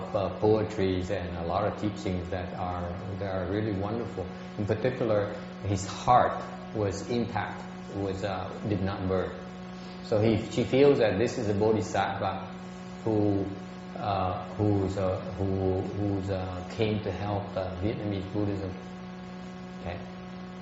poetries and a lot of teachings that are really wonderful. In particular, his heart was intact, did not burn. So she feels that this is a bodhisattva who came to help Vietnamese Buddhism. Okay.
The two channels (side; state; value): both; identical; correlation 1.00